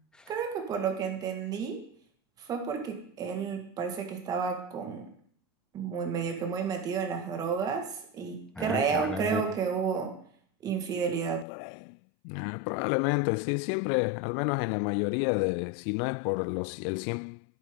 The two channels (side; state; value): right; drops out; at 11.5 s